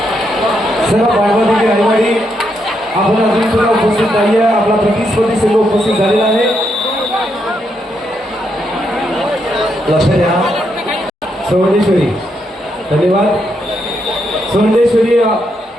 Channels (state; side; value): normal; both; correlation 0.79